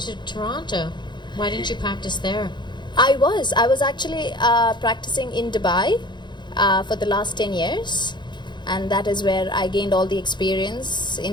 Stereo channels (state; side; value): late; right; 0.22 ms